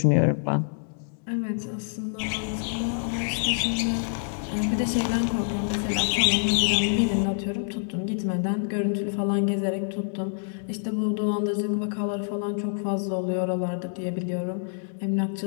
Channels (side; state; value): right; silent; digital silence